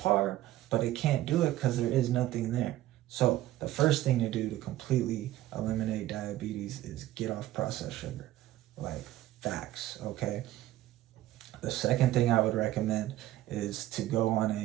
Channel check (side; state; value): left; quieter; 14.8 dB